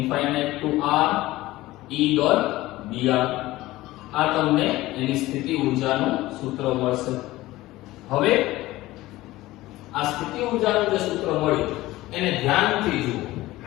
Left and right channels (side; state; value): right; quieter; 17.6 dB